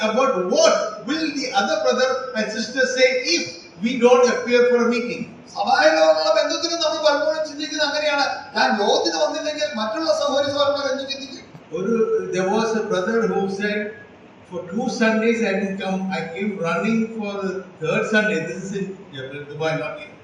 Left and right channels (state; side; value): identical; both; correlation 1.00